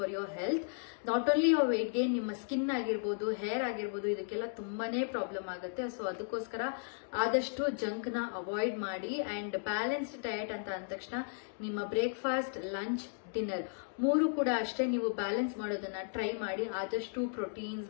your health. Not only your weight gain, ನಿಮ್ಮ ಸ್ಕಿನ್ ಆಗಿರ್ಬೋದು, ಹೇರ್ ಆಗಿರ್ಬೋದು, ಇದಕ್ಕೆಲ್ಲ ತುಂಬಾನೇ ಪ್ರಾಬ್ಲಮ್ ಆಗುತ್ತೆ. ಸೊ ಅದಕ್ಕೋಸ್ಕರ ಆದಷ್ಟು ಜಂಕ್ ನ ಅವಾಯ್ಡ್ ಮಾಡಿ ಅಂಡ್ ಬ್ಯಾಲೆನ್ಸ್ಡ್ ಡಯಟ್ ಅಂತ ಅಂದ ತಕ್ಷಣ ನಿಮ್ಮ ಬ್ರೇಕ್ಫಾಸ್ಟ್, ಲಂಚ್, ಡಿನ್ನರ್ ಮೂರು ಕೂಡ ಅಷ್ಟೇ ನೀವು ಬ್ಯಾಲೆನ್ಸ್ ಮಾಡೋದನ್ನ ಟ್ರೈ ಮಾಡಿ. ಆದಷ್ಟು ಪ್ರೋಟೀನ್ಸ್,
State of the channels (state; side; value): silent; right; digital silence